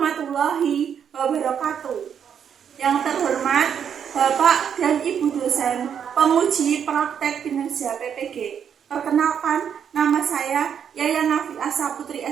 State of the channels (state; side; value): quieter; left; 8.0 dB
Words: wabarakatuh. Yang terhormat Bapak dan Ibu dosen, penguji praktek kinerja PPG. Perkenalkan, nama saya Yayan Nafiasa Putri